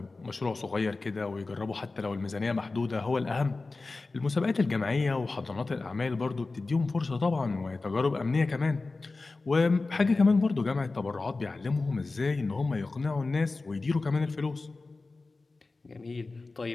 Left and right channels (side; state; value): right; quieter; 3.6 dB